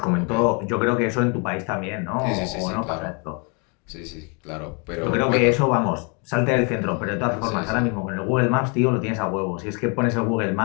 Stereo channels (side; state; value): right; quieter; 34.2 dB